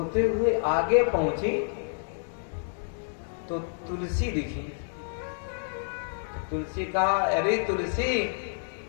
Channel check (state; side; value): silent; right; digital silence